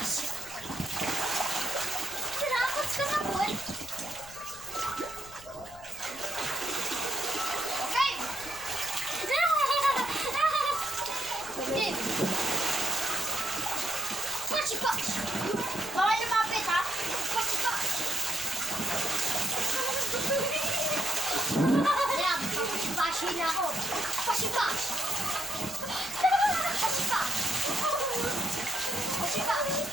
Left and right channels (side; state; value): left; noise; rumble, 20 dB below the sound